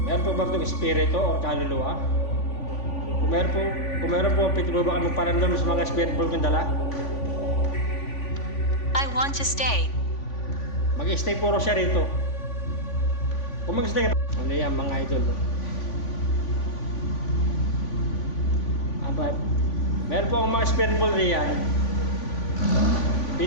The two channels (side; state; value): right; late; 3.5 ms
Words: Meron po ba itong espiritu o kaluluwa? Kung meron po, pwede po ba kayo magparamdam sa mga spirit ball kong dala? I want to stay. Mag-stay puro siya rito. Kung mag-stay ka, ano yan mga idol? Alright. Meron po akong mga spirit ball riyan.